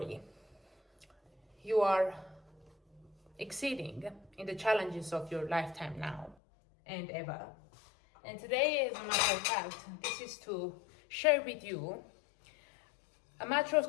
you are exceeding in the challenges of your lifetime now and ever. And today, as a matter of fact, this is to share with you a matter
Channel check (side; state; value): right; drops out; at 6.4 s